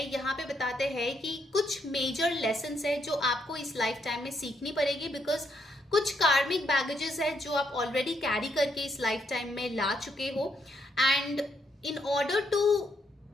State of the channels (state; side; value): normal; both; correlation 0.75